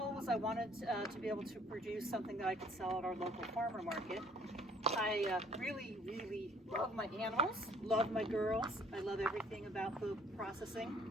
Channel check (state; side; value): normal; both; correlation 0.59